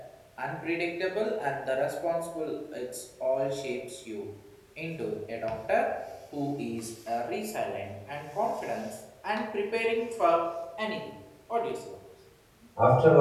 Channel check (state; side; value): identical; both; correlation 1.00